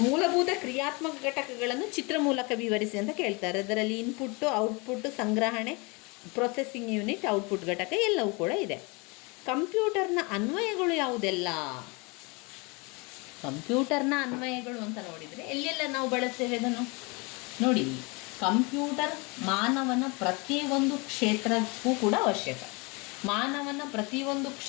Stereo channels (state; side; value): quieter; right; 28.6 dB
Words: ಮೂಲಭೂತ ಕ್ರಿಯಾತ್ಮಕ ಘಟಕಗಳನ್ನು ಚಿತ್ರ ಮೂಲಕ ವಿವರಿಸಿ ಅಂತ ಕೇಳ್ತಾರೆ. ಅದರಲ್ಲಿ ಇನ್ಪುಟ್ಟು, ಔಟ್ಪುಟ್ಟು, ಸಂಗ್ರಹಣೆ, ಪ್ರೊಸೆಸಿಂಗ್ ಯೂನಿಟ್, ಔಟ್ಪುಟ್ ಘಟಕ ಎಲ್ಲವೂ ಕೂಡ ಇದೆ. ಕಂಪ್ಯೂಟರ್ನ ಅನ್ವಯಗಳು ಯಾವುದೆಲ್ಲ ಕಂಪ್ಯೂಟರ್ನ ಅನ್ವಯಗಳು ಅಂತ ನೋಡಿದರೆ ಎಲ್ಲೆಲ್ಲ ನಾವು ಬಳಸ್ತೇವೆ ಅದನ್ನು ನೋಡಿ. ಕಂಪ್ಯೂಟರ್ ಮಾನವನ ಪ್ರತಿಯೊಂದು ಕ್ಷೇತ್ರಕ್ಕೂ ಕೂಡ ಅವಶ್ಯಕ. ಮಾನವನ ಪ್ರತಿಯೊಂದು